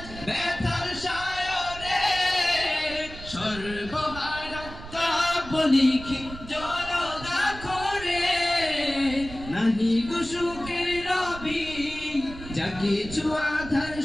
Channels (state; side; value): noise; right; rumble, 13 dB below the sound